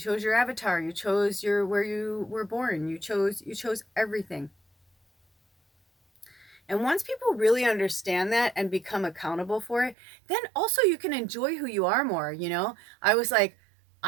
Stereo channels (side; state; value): left; drops out; at 10.0 s